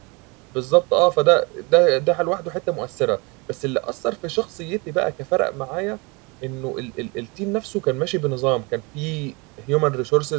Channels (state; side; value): quieter; left; 28.2 dB